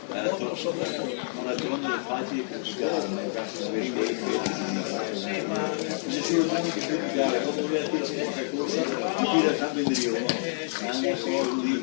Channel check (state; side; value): silent; right; digital silence